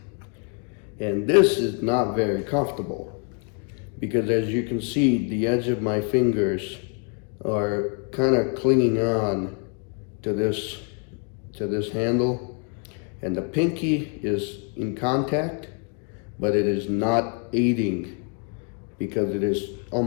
And this is not very comfortable because as you can see, the edge of my fingers are kind of clinging on to this handle, and the pinky is in contact, but it is not aiding because it is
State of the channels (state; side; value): quieter; right; 39.4 dB